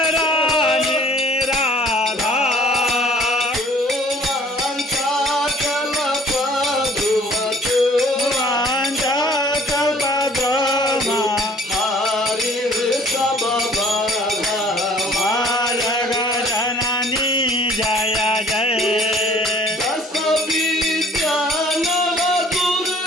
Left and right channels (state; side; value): normal; both; correlation 0.54